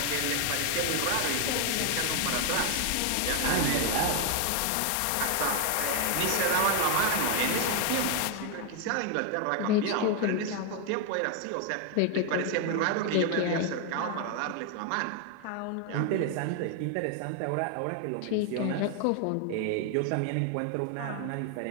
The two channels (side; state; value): both; different; correlation 0.01